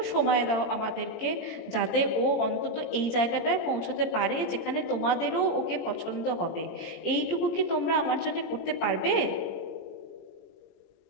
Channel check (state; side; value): late; right; 18 ms